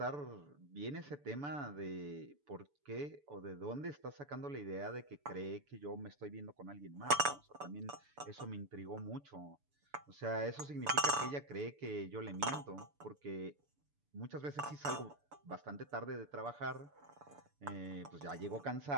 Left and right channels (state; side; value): late; left; 6.9 ms